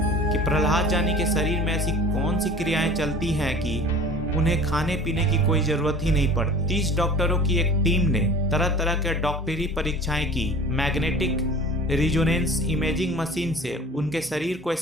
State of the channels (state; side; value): normal; both; correlation 0.44